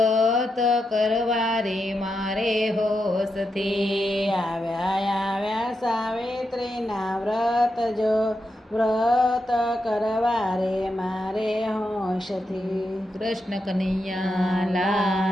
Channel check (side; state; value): both; normal; correlation 0.86